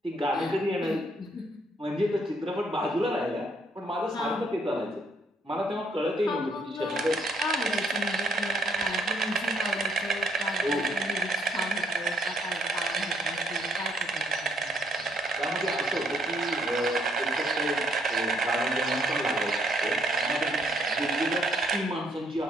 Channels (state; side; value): normal; both; correlation 0.69